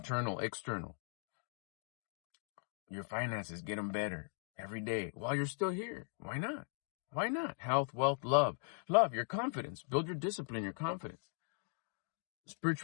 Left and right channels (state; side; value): silent; right; 51 dB below the other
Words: external. Your finances, get them better every day while you're still here. Why not? Why not? Health, wealth, love. Love, your confidence. Build your discipline, your confidence.